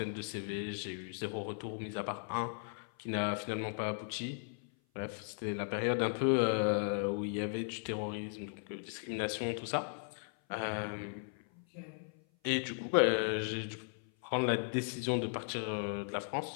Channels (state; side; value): silent; right; 53 dB below the other